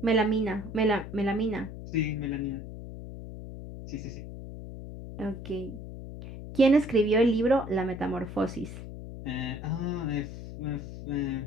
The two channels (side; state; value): left; noise; hum, 11 dB below the sound